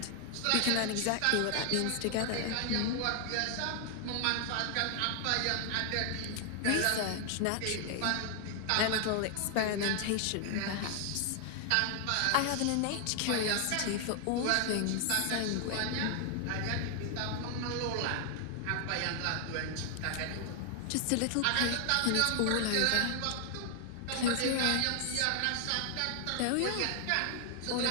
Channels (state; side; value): different; both; correlation 0.00